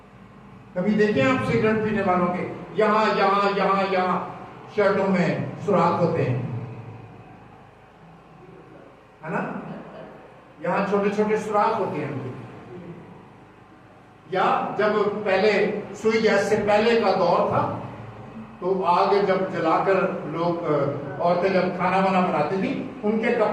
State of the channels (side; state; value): both; identical; correlation 1.00